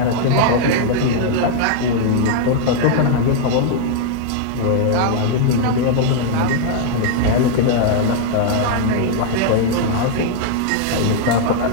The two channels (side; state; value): both; different; correlation -0.01